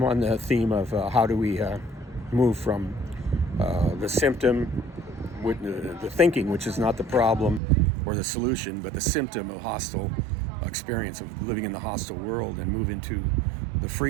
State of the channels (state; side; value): drops out; left; at 7.6 s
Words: the theme of how do we move from the symptom, with the thinking, which is not the problem or the solution, but the symptom of hostile experience of living in the hostile world, and move into the